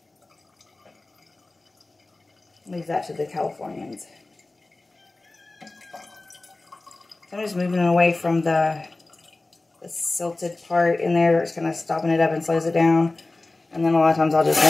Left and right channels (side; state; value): right; quieter; 3.1 dB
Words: Leave that to the Californians. So I'm just moving away from the silted part in there. It's kind of stopping it up and slows it down. And then a lot of times I'll just